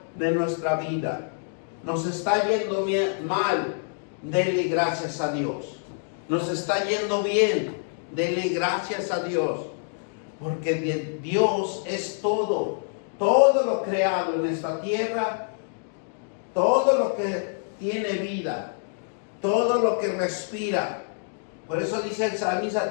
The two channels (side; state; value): right; silent; digital silence